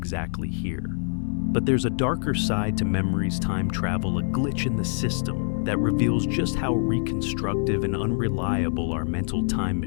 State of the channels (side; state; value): right; silent; 62 dB below the other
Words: here. But there's a darker side to memory's time travel, a glitch in the system that reveals just how reconstructive and unreliable our mental time